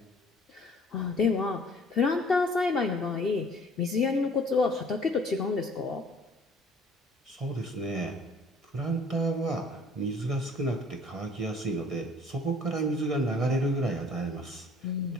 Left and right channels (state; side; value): normal; both; correlation 0.55